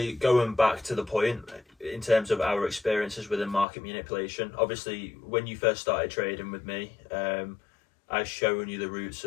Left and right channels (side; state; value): right; drops out; at 3.7 s